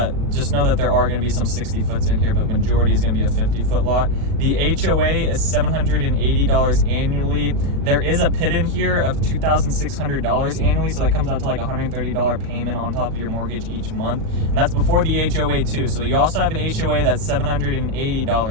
Just know that there are going to be some 60 foots in here, but majority is going to be a 50-foot lot. The HOA is $780 annually. There is a PID in here of $2,600 annually, so that comes out to like $130 payment on top of your mortgage each month, and that's before the HOA too. So you also have an HOA that's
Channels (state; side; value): late; left; 37 ms